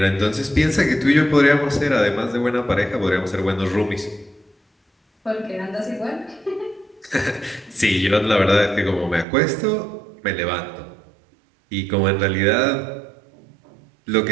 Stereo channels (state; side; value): drops out; left; at 9.2 s